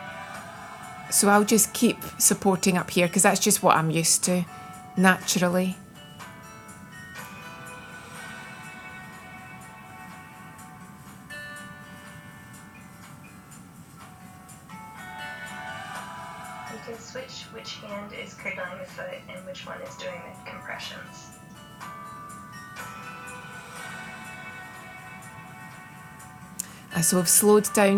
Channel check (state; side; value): identical; both; correlation 1.00